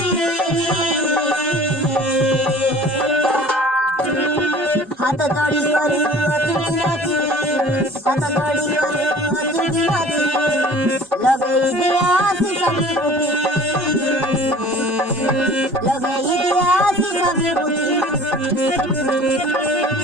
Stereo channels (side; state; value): both; normal; correlation 0.46